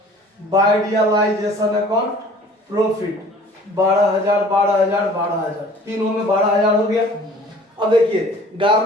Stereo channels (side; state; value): both; normal; correlation 0.50